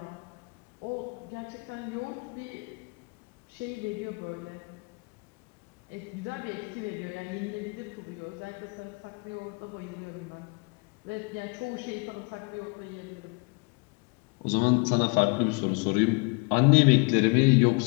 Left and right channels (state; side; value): quieter; right; 31.4 dB